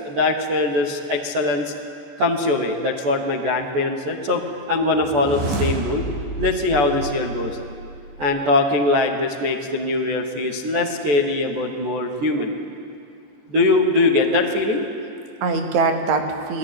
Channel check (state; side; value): late; left; 14 ms